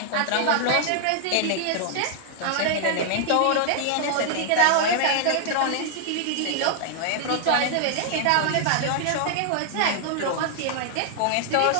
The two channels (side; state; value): both; different; correlation 0.00